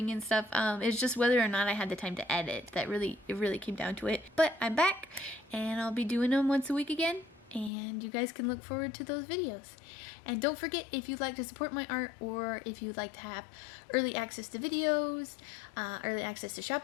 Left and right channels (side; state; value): right; drops out; at 7.7 s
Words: and stuff. It's just whether or not I had the time to edit that it really came down to it. But I'm back, and I'll be doing them once a week again, and you guys can look forward to those videos. And don't forget, if you'd like to support my art, or if you'd like to have early access to videos, early access to shop